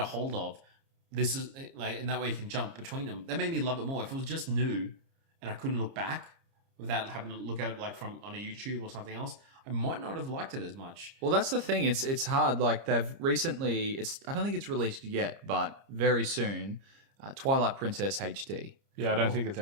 hold of. This is and that way you can jump between them. That made me love it more. If it was just new and I couldn't look back without having to look at it from on a YouTube or something else, I might not have liked it as much. Well, that's the thing. It's hard. They've recently. I don't think it's released yet, but very soon. Twilight Princess HD. Yeah, I don't think it's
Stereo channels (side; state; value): left; late; 30 ms